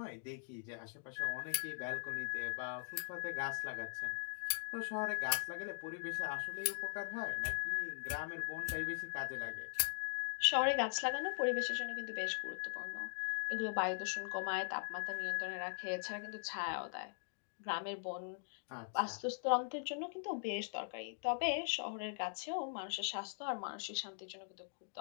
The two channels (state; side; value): silent; right; digital silence